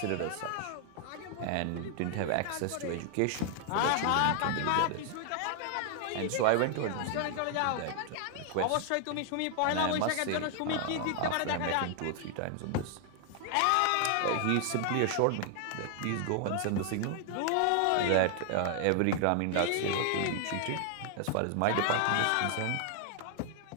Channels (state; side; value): different; both; correlation 0.00